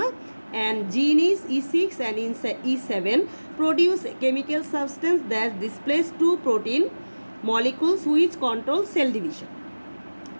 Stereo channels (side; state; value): both; inverted; correlation -1.00